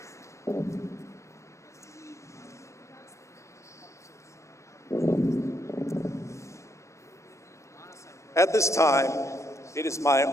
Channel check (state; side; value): late; right; 0.14 ms